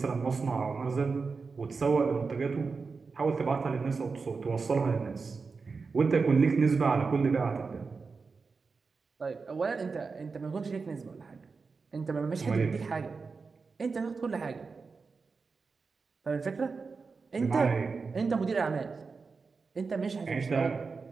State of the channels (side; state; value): left; quieter; 4.7 dB